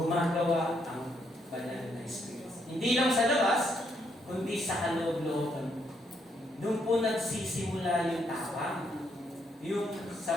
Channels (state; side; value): normal; both; correlation 0.75